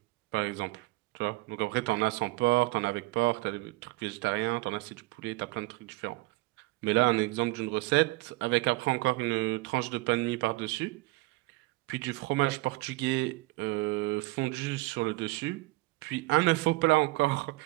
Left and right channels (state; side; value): quieter; left; 21.3 dB